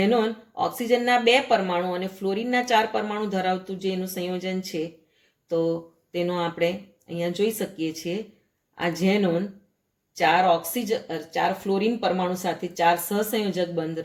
ઓક્સિજનના 2 પરમાણુ અને ફ્લોરિનના 4 પરમાણુ ધરાવતું જે એનું સંયોજન છે, તો તેનો આપણે અહીંયા જોઈ શકીએ છીએ. આ ઝેનોન 4 ફ્લોરિન પરમાણુ સાથે 4 સહસંયોજક બંધ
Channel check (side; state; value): both; identical; correlation 1.00